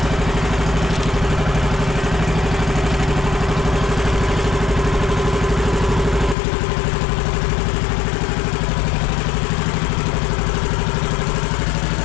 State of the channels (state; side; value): drops out; right; at 6.4 s